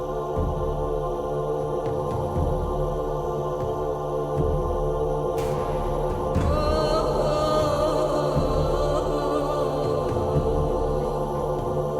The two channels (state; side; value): identical; both; correlation 1.00